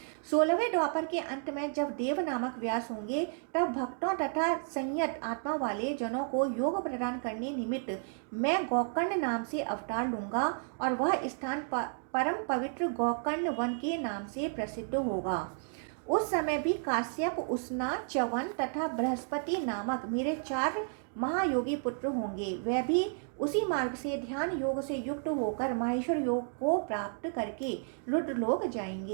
16वें द्वापर के अंत में जब देव नामक व्यास होंगे, तब भक्तों तथा संयत आत्मा वाले जनों को योग प्रदान करने निमित्त मैं गोकर्ण नाम से अवतार लूंगा और वह स्थान परम पवित्र गोकर्ण वन के नाम से प्रसिद्ध होगा। उस समय भी काश्यप, उष्णा, च्यवन तथा बृहस्पति नामक मेरे 4 महायोगी पुत्र होंगे। वे भी उसी मार्ग से ध्यान योग से युक्त होकर माहेश्वर योग को प्राप्त करके रुद्रलोक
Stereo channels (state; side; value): silent; left; 56 dB below the other